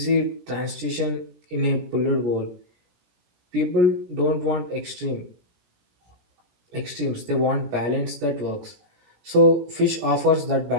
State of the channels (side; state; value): left; late; 17 ms